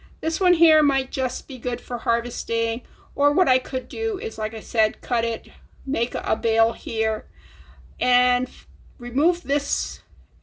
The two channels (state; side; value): identical; both; correlation 1.00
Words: this one here might just be good for harvesting, or what I could do is, like I said, cut it, make a bale here, and remove this